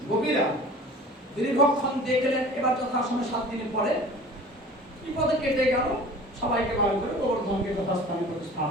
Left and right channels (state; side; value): normal; both; correlation 0.43